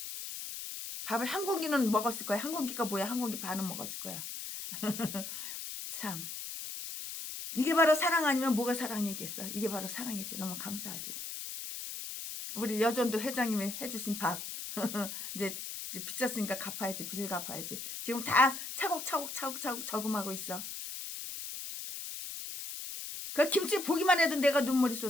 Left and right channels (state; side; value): noise; left; hiss, 7 dB below the sound